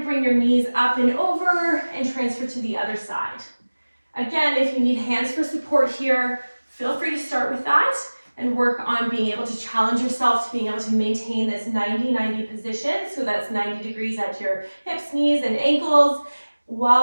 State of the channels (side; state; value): both; inverted; correlation -1.00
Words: bring your knees up and over and transfer to the other side. Again, if you need hands for support here, feel free to start with that and work on being able to challenge yourself to being able to maintain this 90-90 position. So that's 90 degrees at your hips, knees, and ankles,